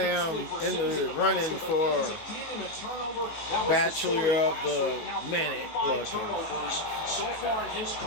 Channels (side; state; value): right; late; 19 ms